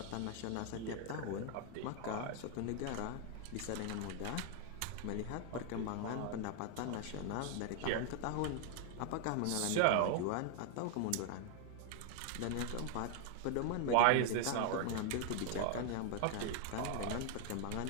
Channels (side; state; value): both; different; correlation 0.00